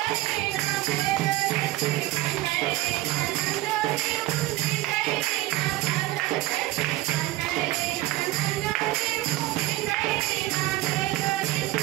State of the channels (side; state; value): left; quieter; 17.1 dB